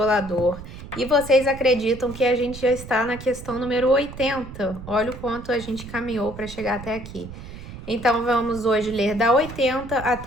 E vocês acreditam que a gente já está na questão número 80. Olha o quanto a gente caminhou para chegar até aqui. Então, vamos hoje ler da 80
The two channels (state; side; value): noise; right; rumble, 13 dB below the sound